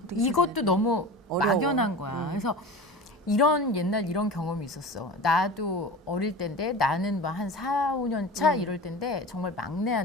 이것도 너무 어려워. 막연한 거야. 그래서 옛날 이런 경험이 있었어. 나도 어릴 때인데 나는 뭐 한 4, 5년 차 이럴 때인데 정말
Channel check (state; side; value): normal; both; correlation 0.33